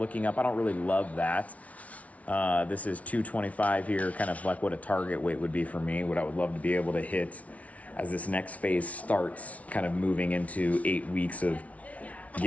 up. I don't really love that. This is 225 here, kind of like what a target weight would be for me, what I would love to be able to hit as this next phase starts, kind of moving into 8 weeks of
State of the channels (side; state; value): right; late; 0.067 ms